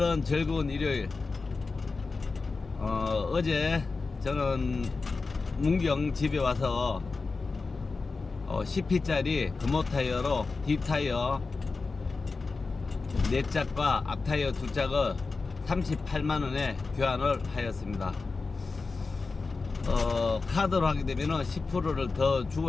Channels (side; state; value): right; quieter; 4.1 dB